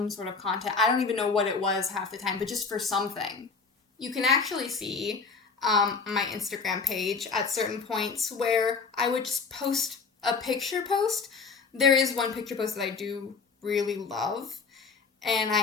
sort of content. I don't even know what it was half the time, but just for something. You can actually see my Instagram page at certain points where I would just post a picture post. There is one picture post that I do really love, and I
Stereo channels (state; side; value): quieter; right; 4.8 dB